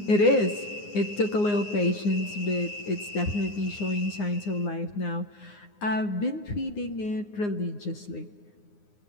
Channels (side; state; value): right; late; 9.7 ms